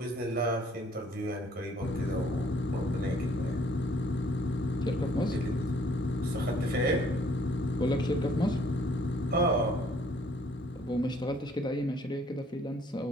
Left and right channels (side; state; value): both; normal; correlation 0.61